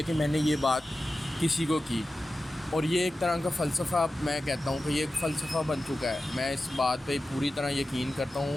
میں نے یہ بات کسی کو کی، اور یہ ایک طرح کا فلسفہ، میں کہتا ہوں کہ یہ ایک فلسفہ بن چکا ہے۔ میں اس بات پہ پوری طرح یقین کرتا ہوں،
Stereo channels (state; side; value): normal; both; correlation 0.94